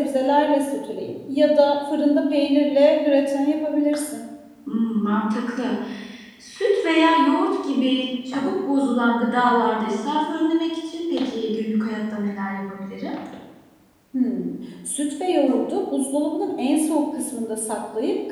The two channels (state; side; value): identical; both; correlation 1.00